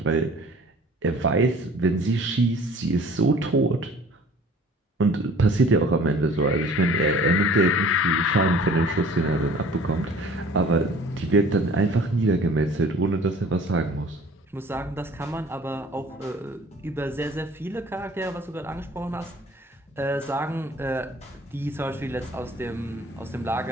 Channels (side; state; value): both; normal; correlation 0.49